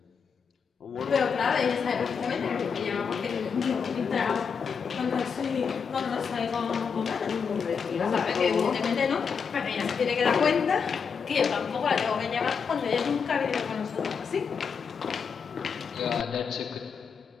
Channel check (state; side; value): quieter; right; 6.2 dB